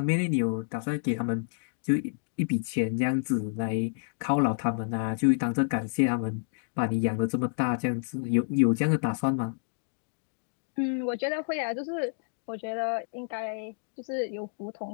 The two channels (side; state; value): right; silent; digital silence